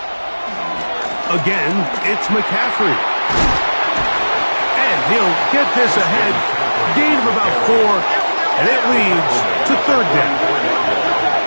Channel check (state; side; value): inverted; both; correlation -1.00